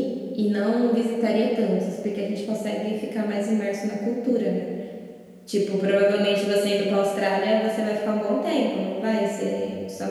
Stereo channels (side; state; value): both; identical; correlation 1.00